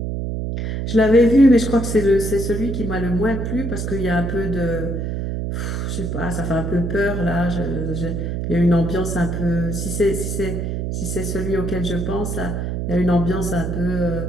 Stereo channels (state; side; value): noise; right; hum, 2 dB below the sound